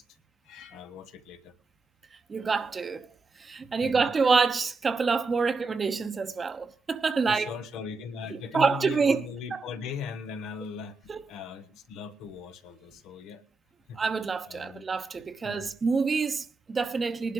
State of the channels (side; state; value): left; quieter; 4.0 dB